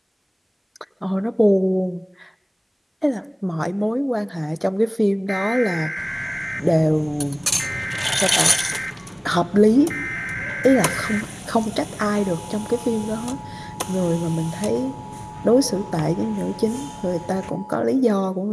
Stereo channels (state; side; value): identical; both; correlation 1.00